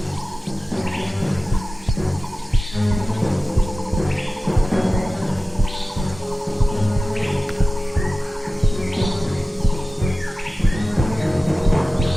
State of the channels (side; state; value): both; normal; correlation 0.96